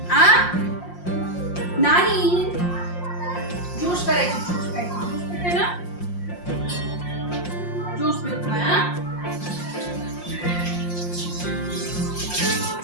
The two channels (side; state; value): right; late; 5.6 ms